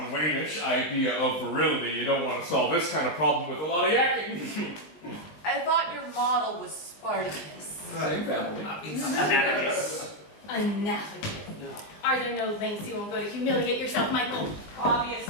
Wayne-ish idea of virility, you don't want to solve this kind of problem with a lot of yakking. I thought your model was Spartacus. Same family. It's analogous. Analogous. Are there no lengths you won't go to humiliate yourself, Michael?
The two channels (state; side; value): late; right; 20 ms